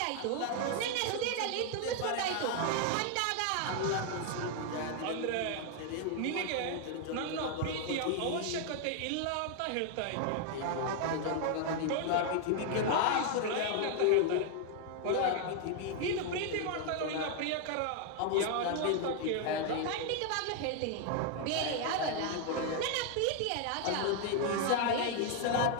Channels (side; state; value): both; different; correlation 0.00